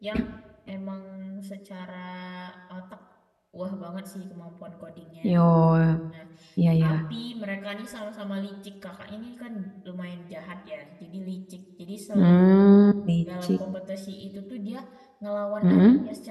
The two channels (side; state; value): both; identical; correlation 1.00